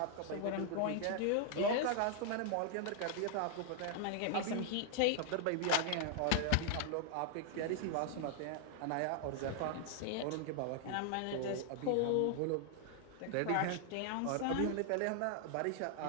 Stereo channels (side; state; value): both; different; correlation 0.00